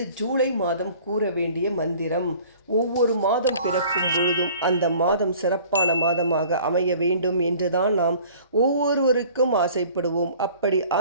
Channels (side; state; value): both; inverted; correlation -0.50